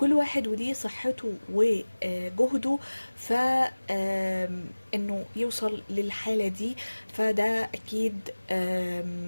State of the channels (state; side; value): inverted; both; correlation -1.00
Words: واحد وليه صحته وجهده. ف انه يوصل للحالة دي فده اكيد